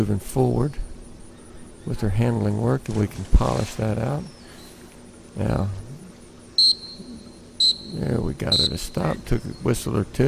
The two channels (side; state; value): both; identical; correlation 1.00